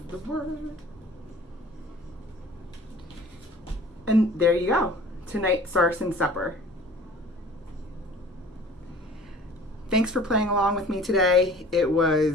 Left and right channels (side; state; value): both; normal; correlation 0.47